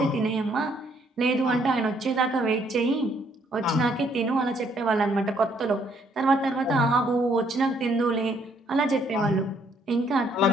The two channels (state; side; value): normal; both; correlation 0.68